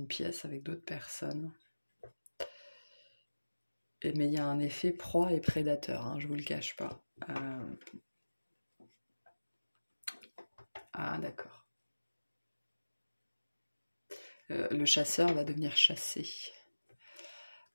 pièce avec d'autres personnes. Mais il y a un effet proie et prédateur, hein, je vous le cache pas. Ah d'accord. Le chasseur va devenir chassé.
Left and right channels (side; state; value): both; inverted; correlation -1.00